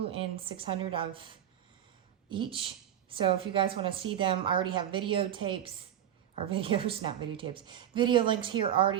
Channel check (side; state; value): left; quieter; 10.5 dB